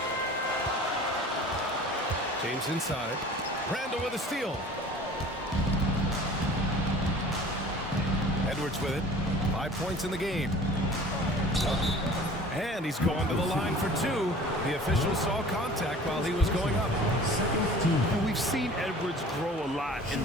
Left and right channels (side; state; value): both; normal; correlation 0.45